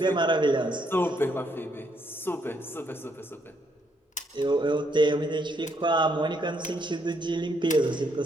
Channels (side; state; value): both; normal; correlation 0.73